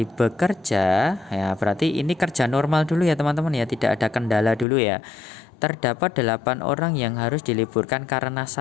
bekerja, ya berarti ini kerja normal dulu ya teman-teman ya, tidak ada kendala dulu ya. Terdapat 8 orang yang harus diliburkan karena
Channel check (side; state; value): right; drops out; at 4.7 s